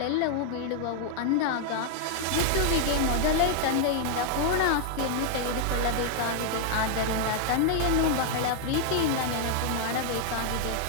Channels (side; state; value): both; different; correlation 0.00